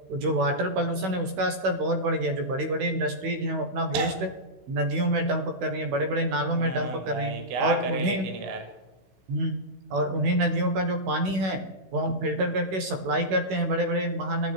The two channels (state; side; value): late; left; 16 ms